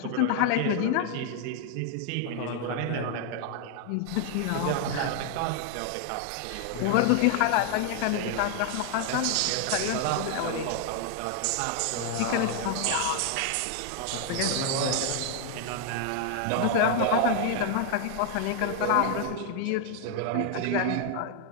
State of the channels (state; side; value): different; both; correlation 0.00